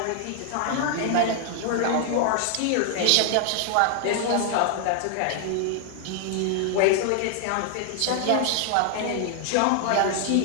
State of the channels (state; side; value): different; both; correlation 0.00